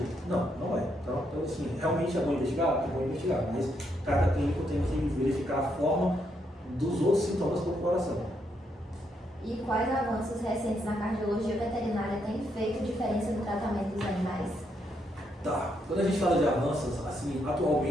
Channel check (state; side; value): normal; both; correlation 0.77